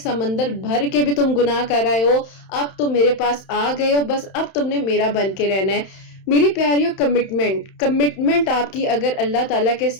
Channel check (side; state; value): right; late; 31 ms